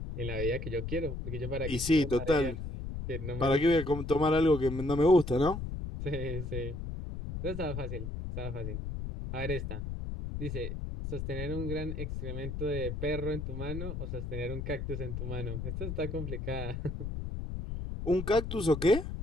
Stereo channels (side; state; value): left; noise; rumble, 5 dB below the sound